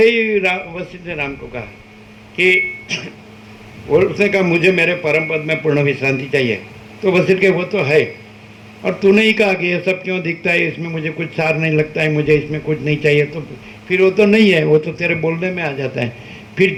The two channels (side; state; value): both; identical; correlation 1.00